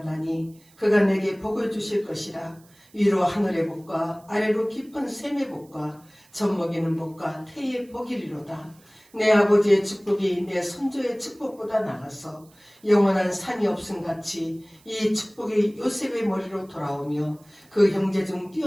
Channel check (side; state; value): right; noise; hiss, 29 dB below the sound